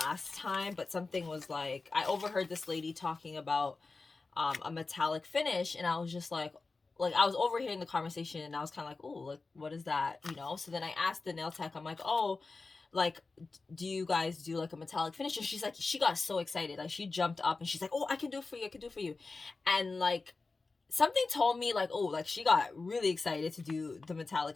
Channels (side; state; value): right; quieter; 3.9 dB